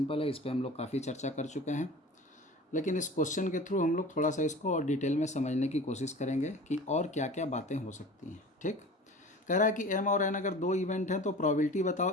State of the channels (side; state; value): both; normal; correlation 0.38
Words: है, इस पर हम लोग काफ़ी चर्चा कर चुके हैं, लेकिन इस क्वेश्चन के थ्रू हम लोग थोड़ा सा इसको और डिटेल में समझने की कोशिश करेंगे कि और क्या क्या बातें हो सकती हैं। ठीक, कह रहा है कि एम और एन अगर दो इवेंट हैं तो प्रोबेबिलिटी